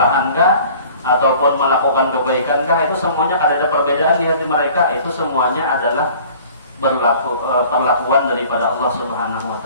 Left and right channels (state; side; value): inverted; both; correlation -0.49